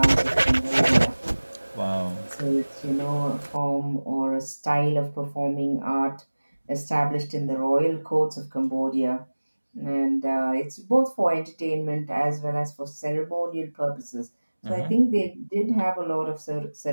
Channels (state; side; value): inverted; both; correlation -1.00